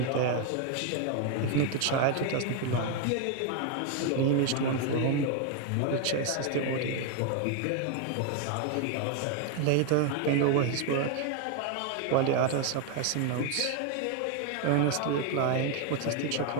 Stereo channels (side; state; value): both; different; correlation 0.01